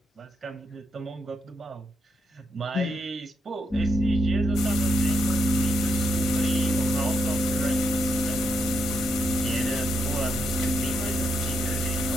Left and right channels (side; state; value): both; normal; correlation 0.80